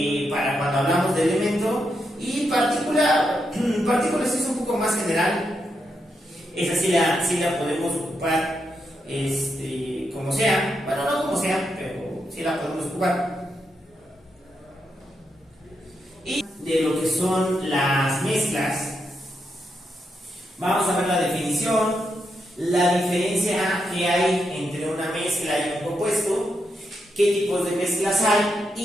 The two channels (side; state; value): both; normal; correlation 0.83